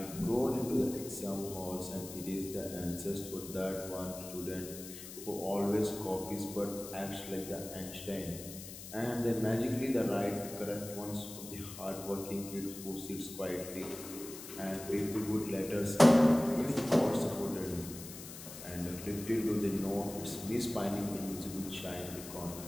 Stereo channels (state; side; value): noise; left; hiss, 12 dB below the sound